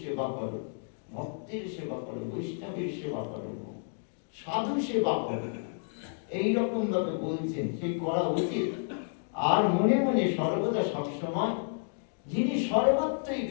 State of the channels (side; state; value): right; silent; digital silence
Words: সেবা করো, ভক্তের সেবা করো, বৈষ্ণবের সেবা করো, সাধু সেবা করো, এইরকম ভাবে বলছেন সেই করা উচিত। আর মনে মনে সর্বদা সবসময় যিনি সর্বত্রই